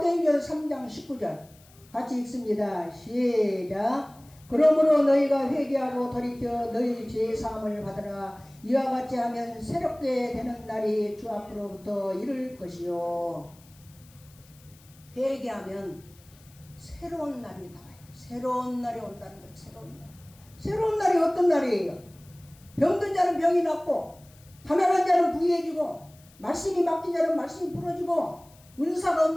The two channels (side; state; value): left; noise; hiss, 27 dB below the sound